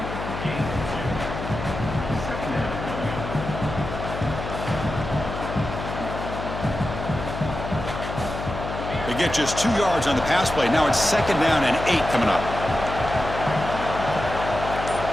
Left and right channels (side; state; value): left; noise; hum, 7 dB below the sound